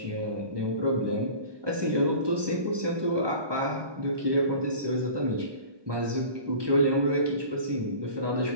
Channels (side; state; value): left; late; 1.2 ms